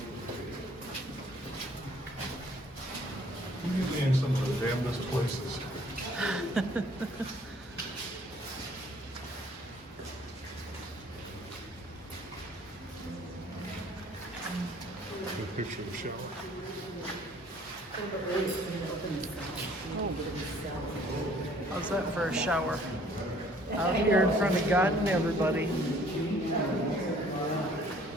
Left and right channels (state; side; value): normal; both; correlation 0.57